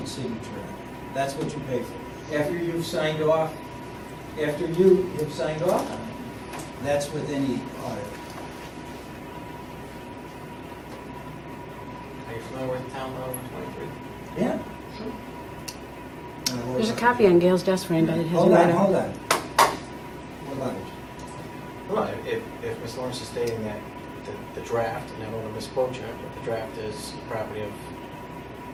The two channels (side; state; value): both; identical; correlation 1.00